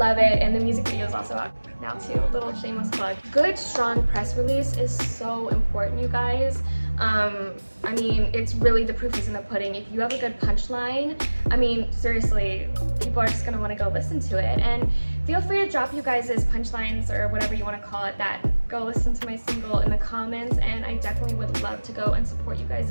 it. And the music video is also out now too. Little shameless plug. Good, strong press release is so important, you guys. I mean, it's really, the proof is in the pudding. If you have a good punchline, I mean, seriously, people are just gonna wanna go listen to it. And feel free to drop you guys' punchlines or whatever you wanna call it, that go listen to my single in the comments, and I definitely would love to go and support you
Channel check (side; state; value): both; inverted; correlation -1.00